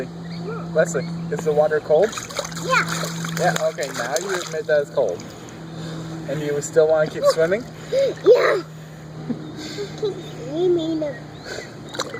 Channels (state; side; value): identical; both; correlation 1.00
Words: Yeah. Wesley, is the water cold? Yeah. Yeah, okay, now you admit that it's cold. And you still want to keep swimming? Yeah. Keep swimming.